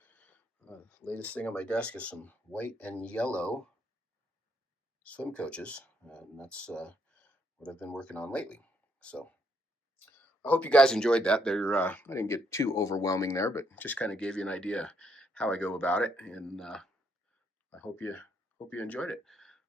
latest thing on my desk is some white and yellow swim coaches, and that's what I've been working on lately. So I hope you guys enjoyed that. I didn't get too overwhelming there, but just kind of gave you an idea how I go about it, and I hope you enjoyed it.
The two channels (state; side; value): normal; both; correlation 0.73